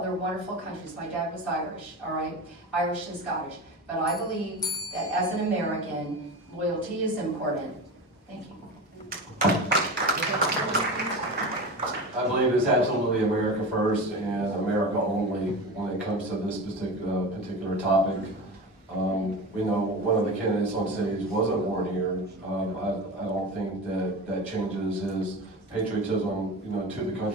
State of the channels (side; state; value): both; normal; correlation 0.28